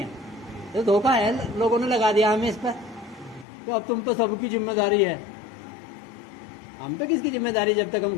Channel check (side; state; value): right; drops out; at 3.5 s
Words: تو دھوکہ ہے, لوگوں نے لگا دیا ہمیں اس پر کہ اب تم تو سب کی ذمہ داری ہے. ہم تو کس کی ذمہ داری جب تک ہم